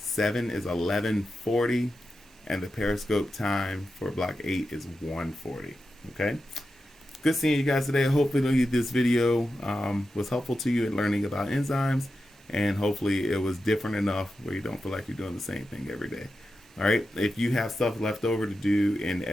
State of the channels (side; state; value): both; normal; correlation 0.90